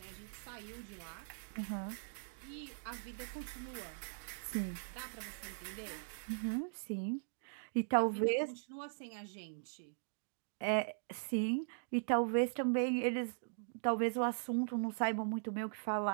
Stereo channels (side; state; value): left; silent; digital silence